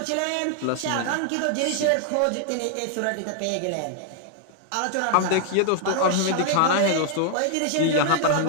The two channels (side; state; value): both; different; correlation -0.01